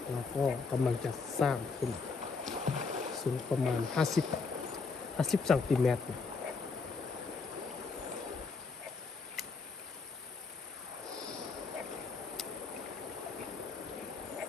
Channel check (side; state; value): right; quieter; 4.5 dB